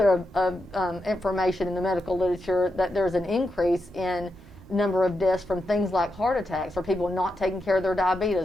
of information in the medical literature that there's an increase in number of deaths from things like heart attacks, or people not taking care of their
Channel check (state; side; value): normal; both; correlation 0.86